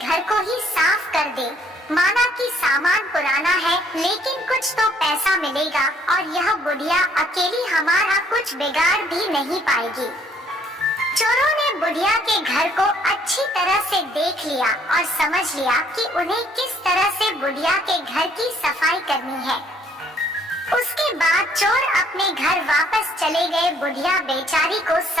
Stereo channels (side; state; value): both; normal; correlation 0.63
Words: को ही साफ कर दें। माना कि सामान पुराना है, लेकिन कुछ तो पैसा मिलेगा और यह बुढ़िया अकेली हमारा कुछ बिगाड़ भी नहीं पाएगी। चोरों ने बुढ़िया के घर को अच्छी तरह से देख लिया और समझ लिया कि उन्हें किस तरह से बुढ़िया के घर की सफाई करनी है। उसके बाद चोर अपने घर वापस चले गए। बुढ़िया बेचारी को